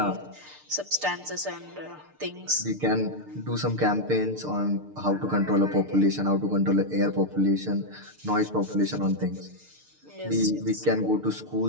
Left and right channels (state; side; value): late; left; 6.7 ms